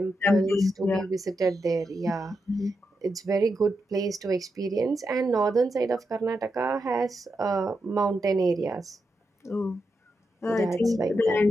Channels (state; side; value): normal; both; correlation 0.86